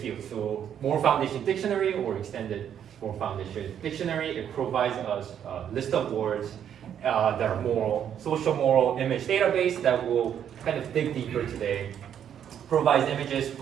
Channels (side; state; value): left; quieter; 9.2 dB